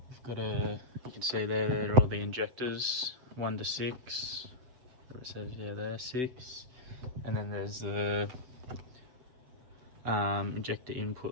got to, you can see there are all the injectors 1 to 6. It says there 6, and then there's the injector input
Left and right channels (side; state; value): left; late; 7.9 ms